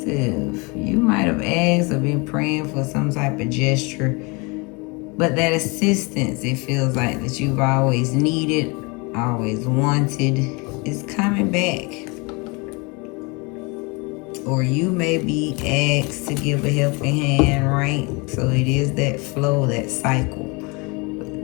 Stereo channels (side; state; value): right; quieter; 28.8 dB